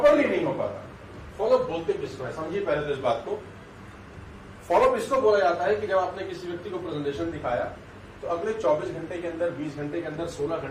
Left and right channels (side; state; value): both; identical; correlation 1.00